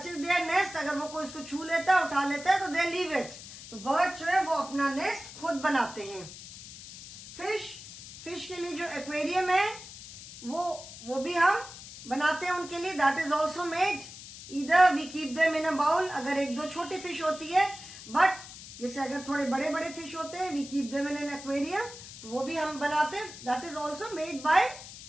their nest, अगर वो कोई उसको छू लेता है, उठा लेता है, तो they leave it. तो bird जो है वो अपना nest खुद बनाते हैं. Fish के लिए जो aquarium है, वो भी हम बनाते हैं उनके लिए. That is also made. Either we keep them in a bowl, अगर एक दो छोटी fish होती है, but जैसे अगर थोड़े बड़े बड़े fish होते हैं, we keep them in an aquarium, तो वो भी हम बनाते हैं. That is also made by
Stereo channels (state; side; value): noise; left; hiss, 14 dB below the sound